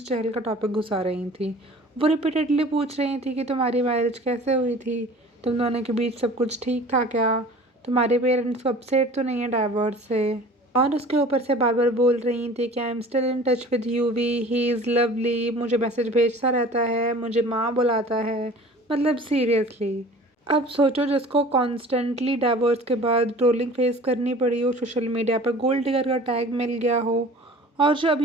चहल का टॉपिक घुसा रही थी। वो रिपीटेडली पूछ रही थी कि तुम्हारी मैरिज कैसे हुई थी, तुम दोनों के बीच सब कुछ ठीक था क्या, तुम्हारे पेरेंट्स को अपसेट तो नहीं है डाइवोर्स से। और उसके ऊपर से बार बार बोल रही थी कि I am still in touch with UV, he is lovely, मुझे मैसेज भेजता रहता है, मुझे माँ बुलाता है। मतलब सीरियसली, अब सोचो जिसको कॉन्स्टेंटली डाइवोर्स के बाद ट्रोलिंग फेस करनी पड़ी हो, सोशल मीडिया पर गोल्ड डिगर का टैग मिल गया हो, और जो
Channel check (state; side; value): normal; both; correlation 0.44